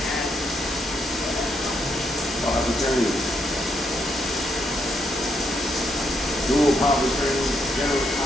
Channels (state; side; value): normal; both; correlation 0.77